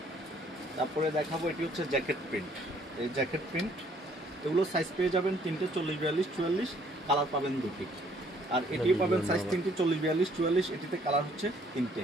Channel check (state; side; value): normal; both; correlation 0.62